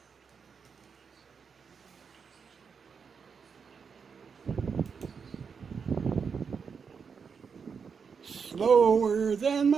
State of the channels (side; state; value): left; quieter; 6.0 dB